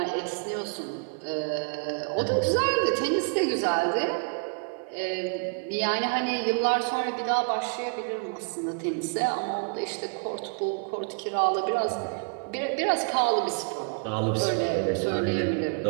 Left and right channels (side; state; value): left; quieter; 38.3 dB